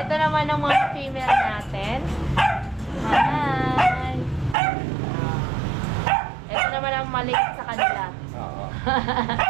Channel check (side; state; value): left; drops out; at 4.5 s